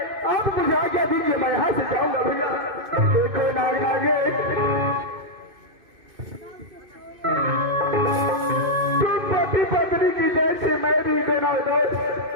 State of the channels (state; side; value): late; left; 2.5 ms